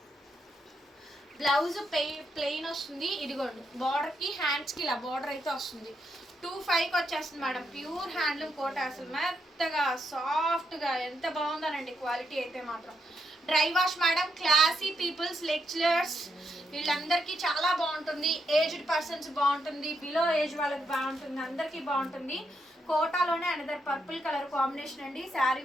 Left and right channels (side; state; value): both; normal; correlation 0.80